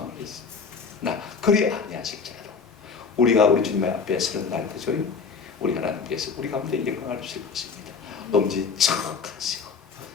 있습니다. 나 그리 아니하실지라도 우리가 우리 주님 앞에 서는 날, 그죠? 우리 하나님께서 우리 가운데 영광을 주실 것입니다. 엄지척하시고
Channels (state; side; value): quieter; right; 5.3 dB